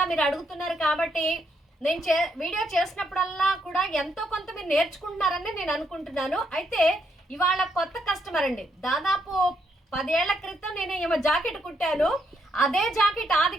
మీరు అడుగుతున్నారు కాబట్టి నేను వీడియో చేసినప్పుడల్లా కూడా ఎంతో కొంత మీరు నేర్చుకుంటున్నారని నేను అనుకుంటున్నాను. అయితే ఇవాళ కొత్త కస్టమర్ అండి. దాదాపు 10 ఏళ్ల క్రితం నేను ఏమో జాకెట్ కుట్టాను. అదే జాకెట్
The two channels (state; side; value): normal; both; correlation 0.76